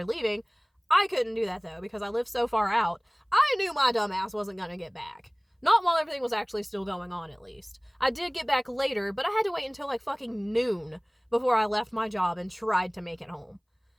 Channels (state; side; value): identical; both; correlation 1.00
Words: leaving. I couldn't do that, though, because I live so far out. I knew my dumb ass wasn't going to get back. Not while everything was actually still going on, at least. I did get back later, but I had to wait until, like, fucking noon before I left my job and tried to make it home.